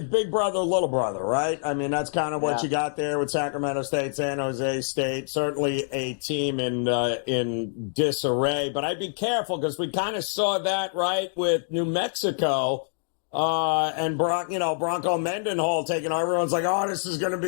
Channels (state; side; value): silent; right; digital silence